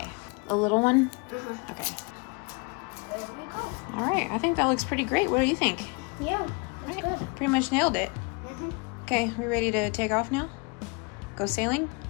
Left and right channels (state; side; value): quieter; right; 31.0 dB